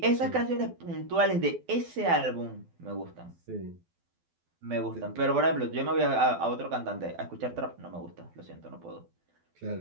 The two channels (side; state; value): left; late; 12 ms